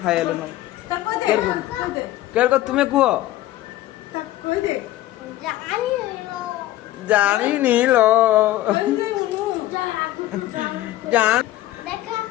हाय हेलो नो केर को तुम्हें कुओ कोई दे जानी नहीं लो जान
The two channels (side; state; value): right; quieter; 15.2 dB